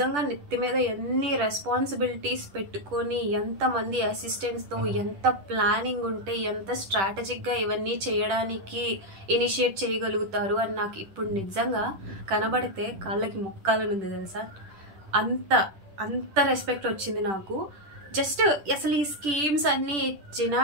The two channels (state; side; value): late; left; 10 ms